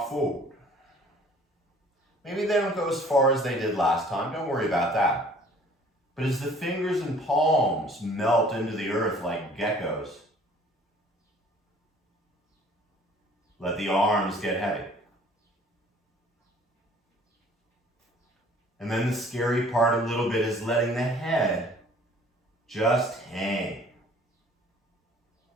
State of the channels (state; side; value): normal; both; correlation 0.53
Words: forward. Maybe they don't go as far as they did last time. Don't worry about that. But as the fingers and palms melt into the earth like geckos, let the arms get heavy. And then the scary part a little bit is letting the head just hang.